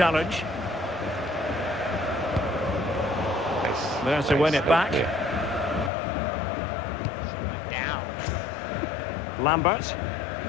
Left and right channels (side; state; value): right; drops out; at 5.9 s